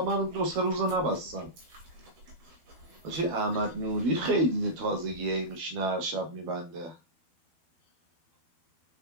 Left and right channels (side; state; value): left; late; 12 ms